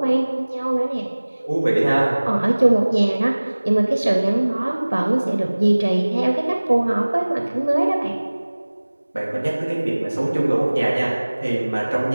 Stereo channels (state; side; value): inverted; both; correlation -1.00